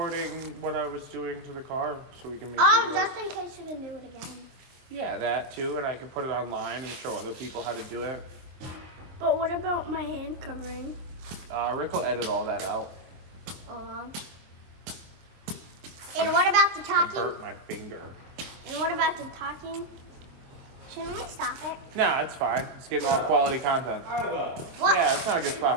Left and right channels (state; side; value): late; left; 23 ms